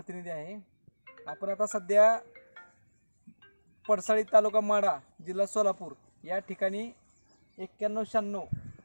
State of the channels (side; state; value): both; inverted; correlation -1.00